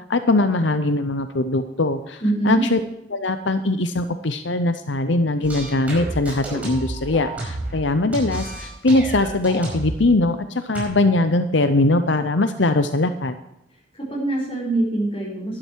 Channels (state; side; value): normal; both; correlation 0.42